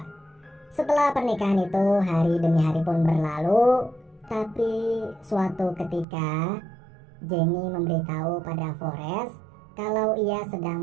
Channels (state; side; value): drops out; left; at 6.1 s